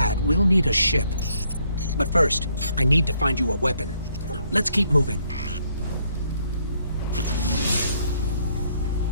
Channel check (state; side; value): inverted; both; correlation -0.70